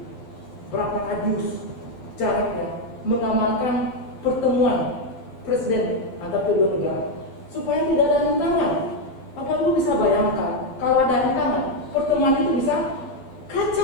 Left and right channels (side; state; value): right; late; 12 ms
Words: Berapa radius jaraknya mengamankan pertemuan presiden antar kedua negara supaya tidak ada rintangan. Bapak Ibu bisa bayangkan kalau ada rintangan, pertemuan itu bisa